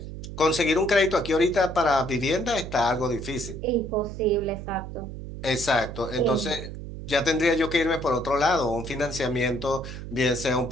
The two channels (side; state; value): right; noise; hum, 9 dB below the sound